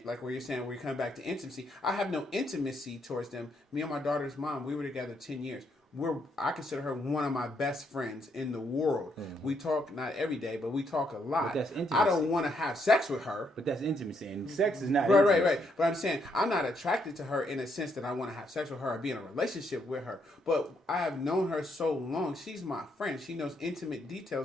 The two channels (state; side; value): normal; both; correlation 0.75